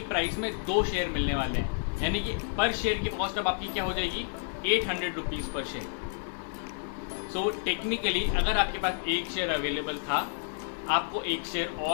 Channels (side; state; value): right; silent; digital silence